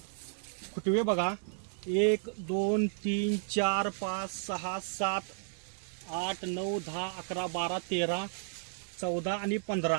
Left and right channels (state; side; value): silent; left; digital silence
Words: फुटवे बघा, 1 2 3 4 5 6 7 8 9 10 11 12 13 14 आणि